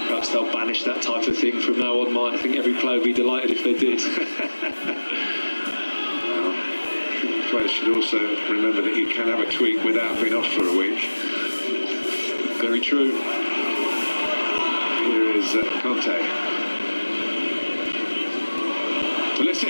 Perhaps they'll banish that type of thing from now on, Martin. I think every player would be delighted if they did. Players should also remember that you can have a tweak without being off for a week. Very true. Here is Conte.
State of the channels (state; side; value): inverted; both; correlation -1.00